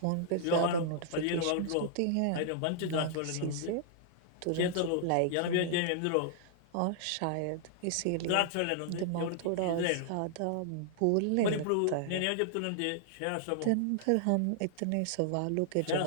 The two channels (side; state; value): both; different; correlation -0.01